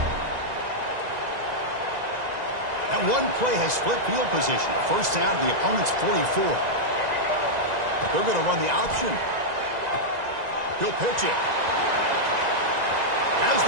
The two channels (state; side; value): late; left; 2.0 ms